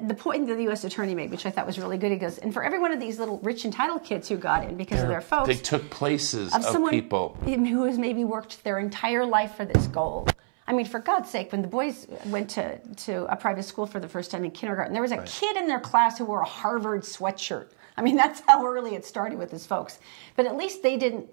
the point that the U.S. Attorney made, which I thought was really good. He goes, and for every one of these little rich entitled kids who got in because of their folks, they took places of someone people who has maybe worked their entire life for this goal. I mean, for God's sake, when the boys went to a private school for the first time in kindergarten, there was a kid in their class who wore a Harvard sweatshirt. I mean, that's how early it started with his folks. But at least they didn't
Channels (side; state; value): left; silent; 60 dB below the other